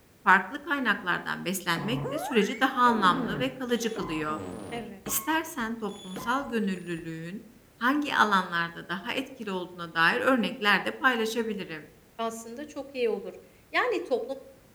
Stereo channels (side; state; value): both; identical; correlation 1.00